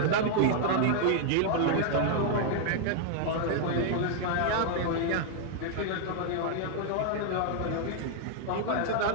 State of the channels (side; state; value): both; different; correlation 0.00